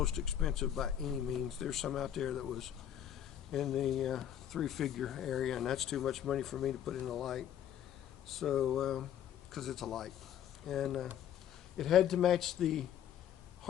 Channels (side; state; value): right; quieter; 10.2 dB